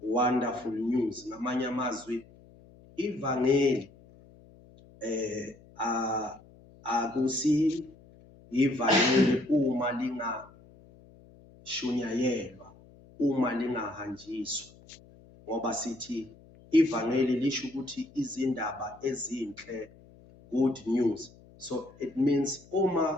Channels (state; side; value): noise; left; hum, 24 dB below the sound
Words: Ngamanye amazwi ivangeli akusi ivangeli uma lingashunayelwa, uma lingahanjiswa, ngoba sithi ivangeli lisho ukuthi izindaba ezinhle, good news. So it means